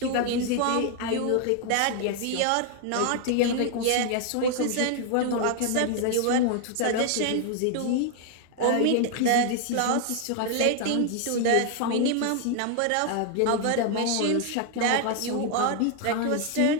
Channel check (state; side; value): different; both; correlation 0.00